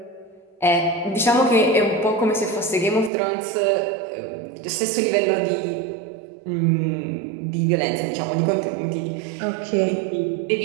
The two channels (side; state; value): left; drops out; at 3.1 s